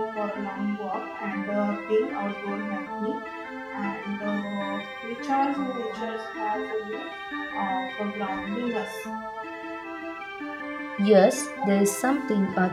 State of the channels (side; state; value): both; identical; correlation 1.00